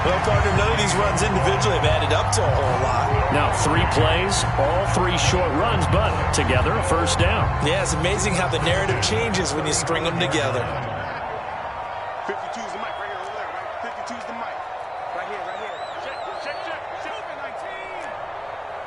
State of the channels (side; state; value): both; identical; correlation 1.00